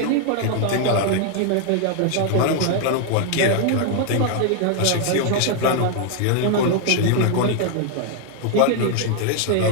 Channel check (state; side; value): different; both; correlation 0.00